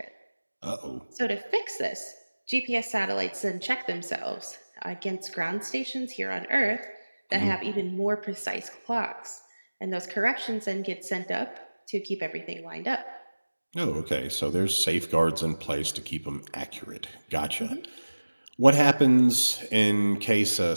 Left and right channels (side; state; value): both; inverted; correlation -1.00